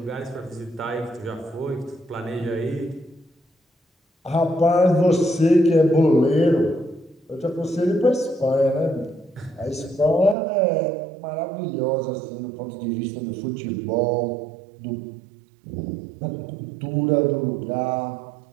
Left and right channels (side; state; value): left; drops out; at 10.4 s